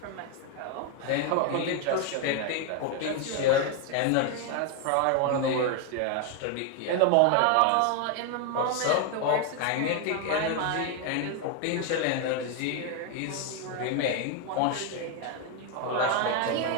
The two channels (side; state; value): both; different; correlation 0.01